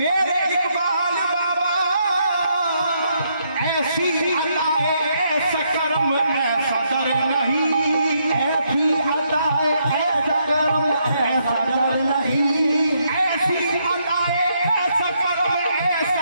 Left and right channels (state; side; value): inverted; both; correlation -0.76